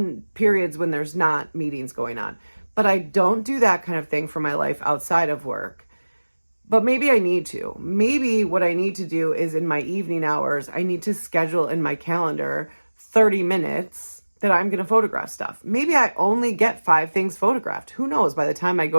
periods when there's not meetings going on. But I don't do that kind of thing for my life outside of work. But maybe I need to. Maybe what I need to do is in my evening hours, I need to schedule in my calendar 30 minutes that I'm going to photograph stuff. Maybe I only get 5 things photographed. Who knows? By the time I go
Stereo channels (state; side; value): inverted; both; correlation -1.00